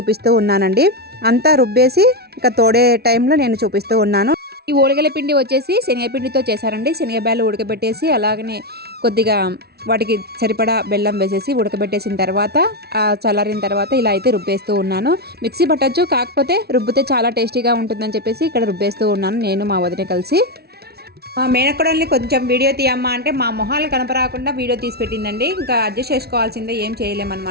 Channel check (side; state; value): left; late; 0.46 ms